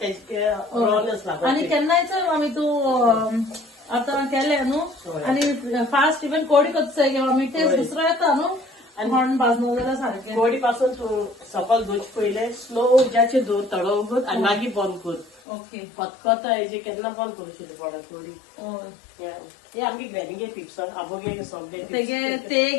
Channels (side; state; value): right; drops out; at 15.4 s